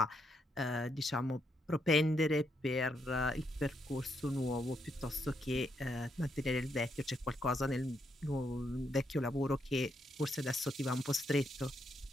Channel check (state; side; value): normal; both; correlation 0.78